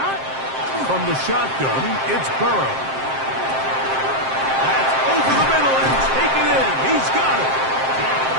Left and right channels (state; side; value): late; left; 7.6 ms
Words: From the shotgun, it's Burrow. That's over the middle and taken in. He's got it.